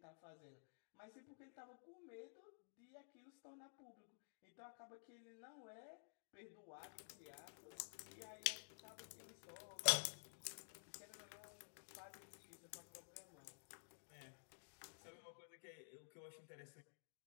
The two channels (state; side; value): silent; right; digital silence